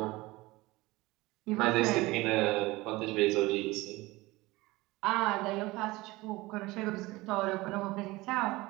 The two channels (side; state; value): left; quieter; 20.7 dB